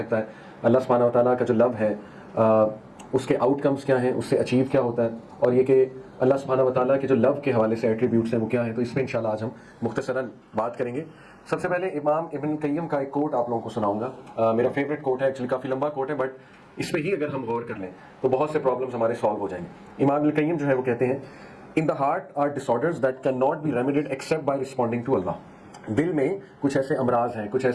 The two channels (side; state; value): both; identical; correlation 1.00